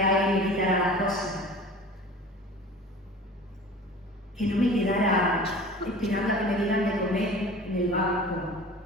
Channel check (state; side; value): normal; both; correlation 0.41